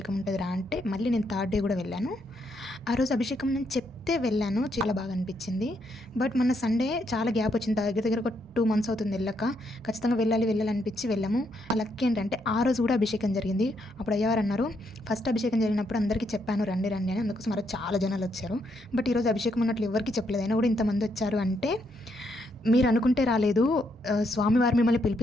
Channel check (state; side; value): normal; both; correlation 0.76